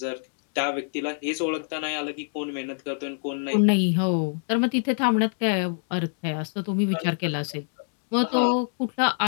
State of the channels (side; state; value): right; silent; digital silence